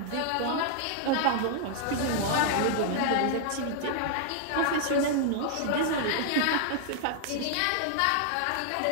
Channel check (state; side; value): different; both; correlation -0.01